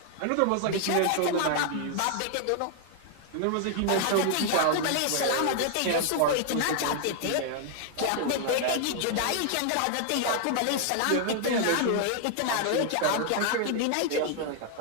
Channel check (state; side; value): different; both; correlation 0.00